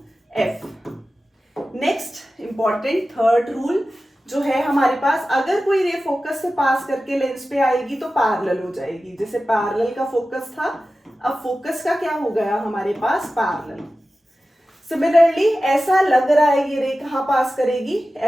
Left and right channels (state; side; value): normal; both; correlation 0.94